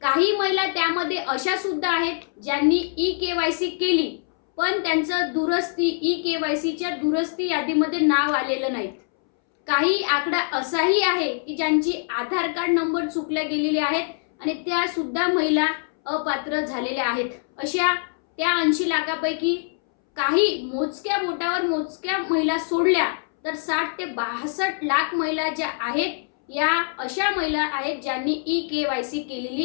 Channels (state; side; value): silent; right; 63 dB below the other